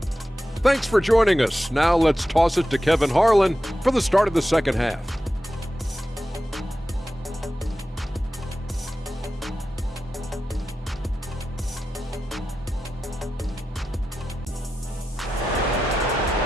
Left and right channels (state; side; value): normal; both; correlation 0.91